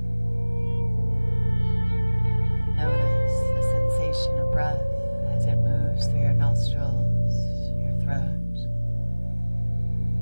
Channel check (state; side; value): inverted; both; correlation -1.00